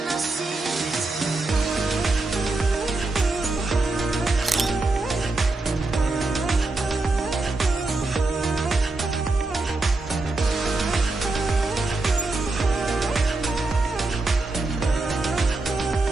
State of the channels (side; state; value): left; quieter; 3.2 dB